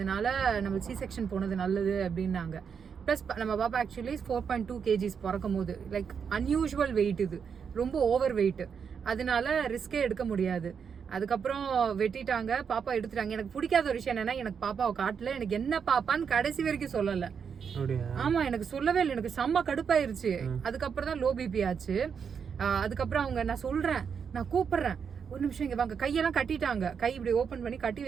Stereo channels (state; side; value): quieter; left; 6.7 dB